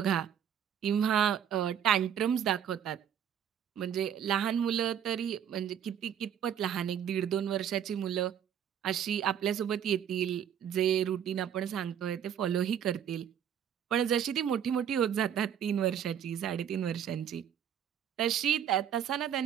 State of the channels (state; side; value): quieter; left; 9.1 dB